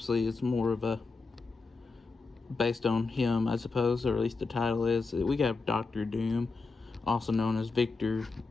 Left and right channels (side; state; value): right; quieter; 4.1 dB